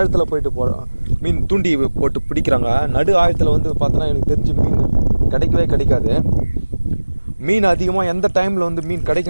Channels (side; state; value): both; inverted; correlation -1.00